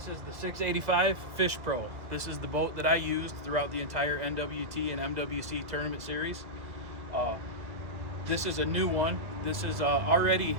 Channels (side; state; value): left; late; 2.0 ms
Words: is the 685 Fish Pro. This is the boat that I used throughout the entire NWT and MWC tournament series. This is a new one. This is already,